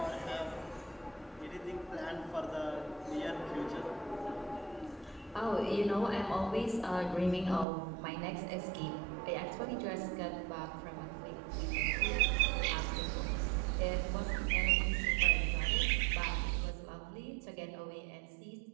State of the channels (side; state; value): left; drops out; at 7.7 s